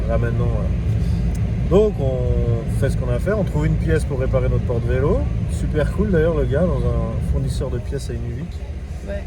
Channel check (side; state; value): both; identical; correlation 1.00